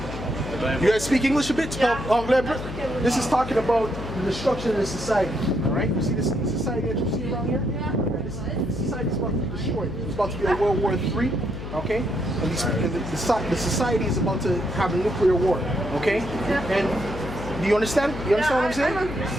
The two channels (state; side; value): noise; left; hum, 9 dB below the sound